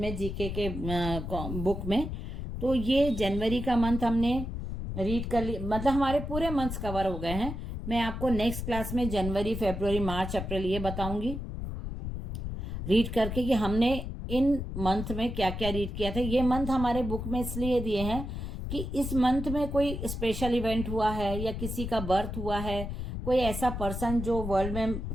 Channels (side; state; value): left; noise; rumble, 5 dB below the sound